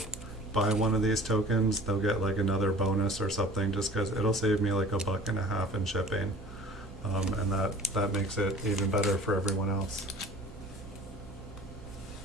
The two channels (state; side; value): normal; both; correlation 0.46